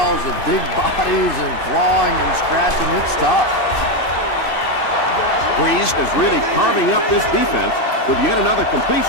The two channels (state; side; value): late; right; 2.5 ms